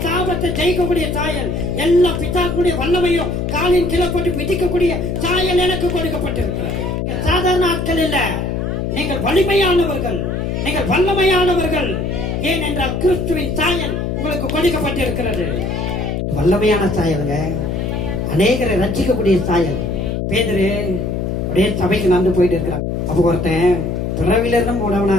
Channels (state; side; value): noise; left; hum, 2 dB below the sound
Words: சாபத்தை ஜெயிக்கக்கூடிய சாயல், எல்லா பிதாக்களுடைய வல்லமையும் காலின் கீழே போட்டு மிதிக்கக்கூடிய சாயல் எனக்கு கொடுக்கப்பட்டிருக்கிறது. சாதாரண ஆட்கள் இல்ல, நீங்கள் வலிமையானவர்கள், நீங்கள் வல்லமையானவர்கள். ஏன் என்றால் கிறிஸ்துவின் சாயல் உங்களுக்கு கொடுக்கப்பட்டிருக்கிறது. வல்லமையான சாயலுங்க, அநேகரை ரட்சிக்கக்கூடிய சாயல். பேதுரு அப்படியே சபைக்கு நடந்து போயிட்டு இருக்கிறான். அப்போ ஒருத்தன் பிறவில இருந்து மூடவனா